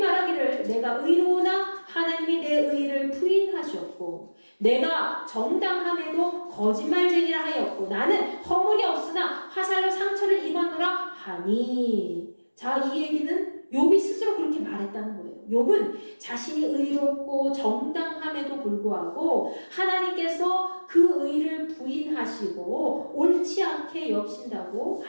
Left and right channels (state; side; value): inverted; both; correlation -1.00